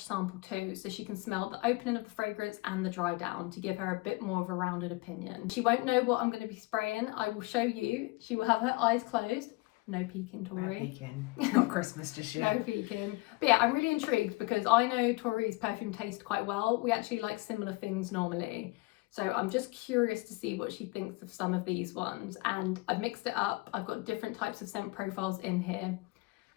sample too, so she can smell the opening of the fragrance and the dry down to give her a bit more of a rounded opinion. She won't know what I'm going to be spraying. I will show you. She will have her eyes closed. No peeking, Tori. No peeking. Not Christmas just yet. No peeking. But yeah, I'm really intrigued because I know Tori's perfume taste quite well. We actually like similar things normally. So I'm just curious to see what she thinks of some of these ones. And I've mixed it up. I've got different types of scent profiles in here.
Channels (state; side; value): quieter; right; 23.6 dB